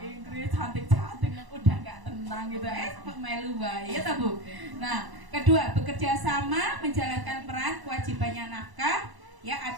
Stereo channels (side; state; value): left; late; 1.0 ms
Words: Inggris, cantik-cantik, udah nggak tenang gitu, melu bae ya Bu. Nah, kedua, bekerja sama menjalankan peran kewajibannya nafkah ya